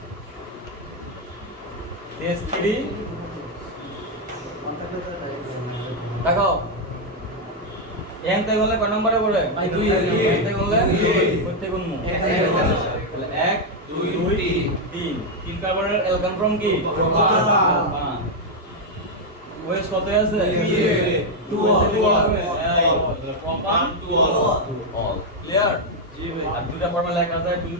S3 দেখো এনতে গলে কয় নম্বরে পড়ে ভাই 2 এনতে গলে করতে কোন মু তাহলে 1 2 3 তিন কার্বনের অ্যালকান ফর্ম কি প্রোপান ওয়েস কত আছে 2 প্রোপান 2 অল ক্লিয়ার জি ভাই আর দুটো ফর্মুলা লেখা যায় তুমি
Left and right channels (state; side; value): normal; both; correlation 0.01